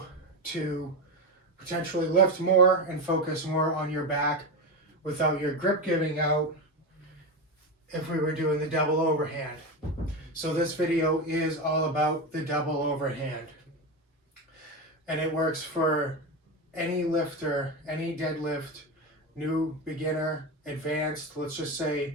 to potentially lift more and focus more on your back without your grip giving out if we were doing the double overhand. So this video is all about the double overhand, and it works for any lifter, any deadlift, new, beginner, advanced. Let's just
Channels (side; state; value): both; normal; correlation 0.16